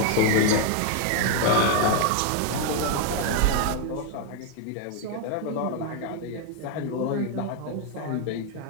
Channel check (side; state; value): both; different; correlation 0.01